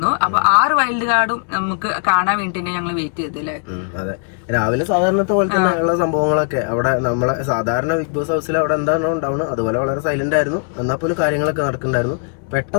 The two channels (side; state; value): right; silent; 58 dB below the other